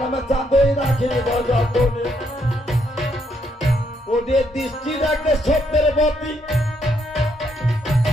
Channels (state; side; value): normal; both; correlation 0.74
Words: চাঁদই রাখি গো যতনে। ওদের দৃষ্টি রাখলে সত্যের বতী,